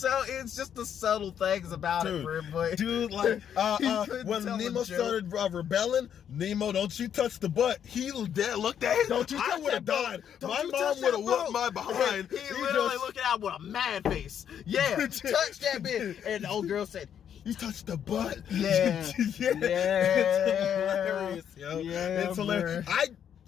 just the subtle things about it, bro. But, dude, like, when Nemo started rebelling, Nemo, don't you touch the butt. He looked at him. I would have died. My mom would have whooped my behind. He literally looking out with a mad face. Yeah, touch that bit. And the old girl said, you touched the butt. Yeah. It's hilarious, yo. Yeah, it's hilarious.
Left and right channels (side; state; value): right; quieter; 8.9 dB